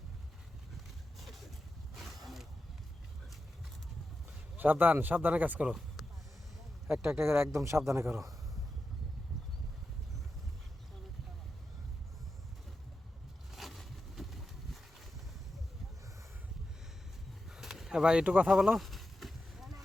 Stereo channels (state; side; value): normal; both; correlation 0.90